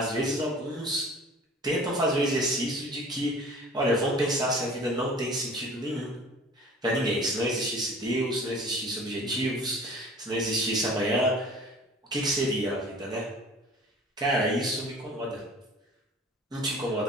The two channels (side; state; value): both; normal; correlation 0.45